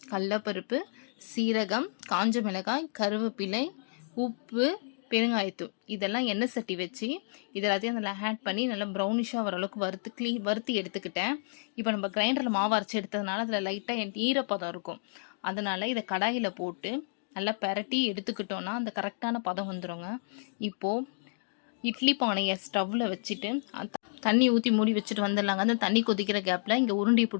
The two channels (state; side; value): silent; right; digital silence